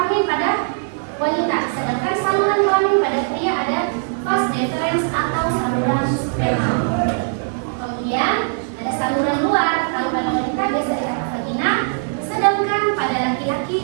pada wanita. Sedangkan saluran kelamin pada pria ada vas deferens atau saluran sperma. Kemudian ada saluran luar. Kalau pada wanita biasa dikatakan vagina. Sedangkan pada laki-laki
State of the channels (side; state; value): left; silent; 65 dB below the other